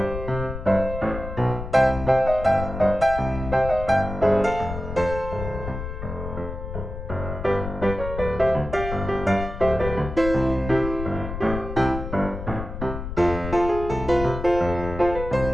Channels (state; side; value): noise; left; rumble, 8 dB below the sound